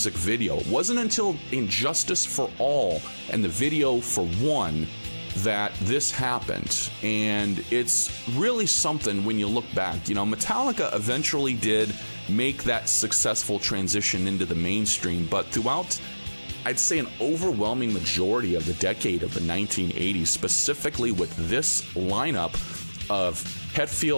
video. It wasn't until Injustice for All and the video for One that this happened. And it's really something when you look back. Metallica eventually did make that successful transition into the mainstream, but throughout, I'd say, an overwhelming majority of the decade of the 1980s, specifically with this lineup of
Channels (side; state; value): both; inverted; correlation -1.00